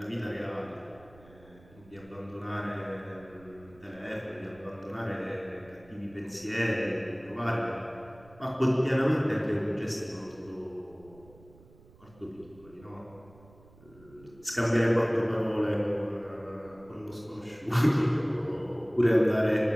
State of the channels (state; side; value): noise; right; rumble, 25 dB below the sound